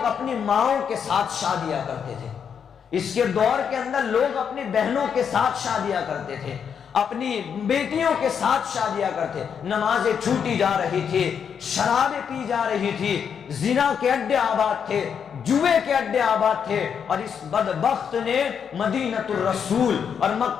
اپنی ماؤں کے ساتھ شادیاں کرتے تھے، اس کے دور کے اندر لوگ اپنی بہنوں کے ساتھ شادیاں کرتے تھے، اپنی بیٹیوں کے ساتھ شادیاں کرتے، نمازیں چھوٹی جا رہی تھی، شرابیں پی جا رہی تھی، زنا کے اڈے آباد تھے، جوئے کے اڈے آباد تھے، اور اس بدبخت نے مدینۃ الرسول اور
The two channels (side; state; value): right; quieter; 7.3 dB